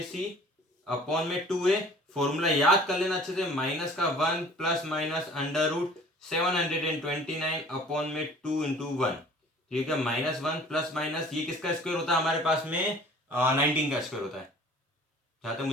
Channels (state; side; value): normal; both; correlation 0.49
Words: upon में 2a। फॉर्मूला याद कर लेना अच्छे से, माइनस का 1 plus minus under root 729 upon में 2 इंटू 1, ठीक है। माइनस 1 प्लस माइनस, ये किसका स्क्वायर होता है हमारे पास में, 19 का स्क्वायर होता है, जहां तक